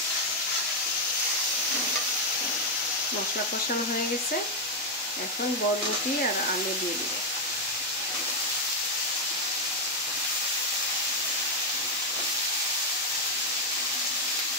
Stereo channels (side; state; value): both; normal; correlation 0.02